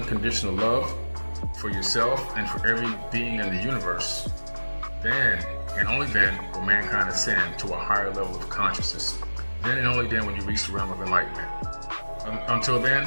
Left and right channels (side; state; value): both; inverted; correlation -1.00